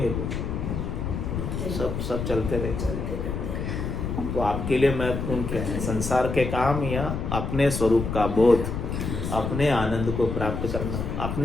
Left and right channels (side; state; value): left; noise; rumble, 3 dB below the sound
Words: कुछ, सब चलते रहेंगे। तो आपके लिए महत्वपूर्ण क्या है? संसार के काम या अपने स्वरूप का बोध, अपने आनंद को प्राप्त करना,